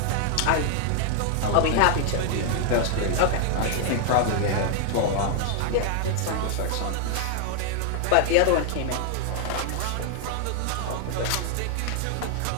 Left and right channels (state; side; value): different; both; correlation 0.00